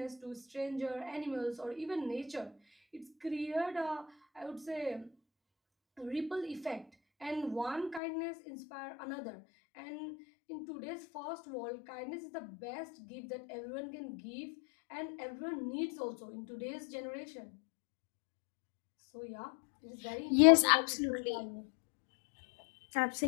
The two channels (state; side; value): drops out; right; at 8.0 s